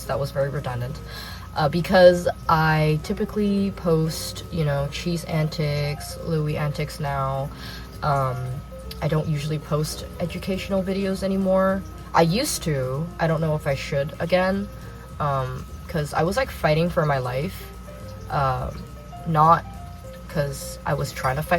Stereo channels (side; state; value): both; identical; correlation 1.00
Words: That was very redundant. Because I typically post, cheese antics, Louis antics now. I don't usually post educational videos anymore. I used to. I don't know if I should again. Because I was like fighting for my life. Not because I was trying to